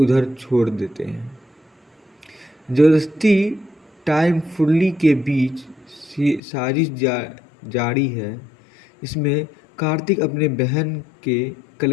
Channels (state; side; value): drops out; right; at 6.4 s